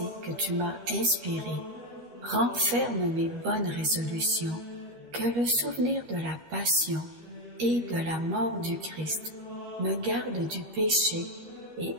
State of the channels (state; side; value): late; left; 13 ms